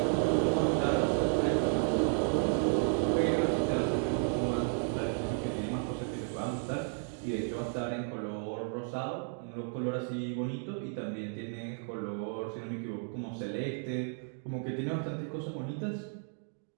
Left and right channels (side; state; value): left; silent; 56 dB below the other